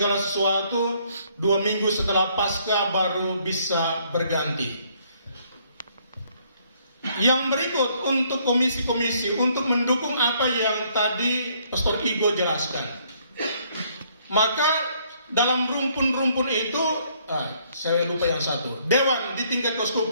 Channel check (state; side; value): inverted; both; correlation -0.66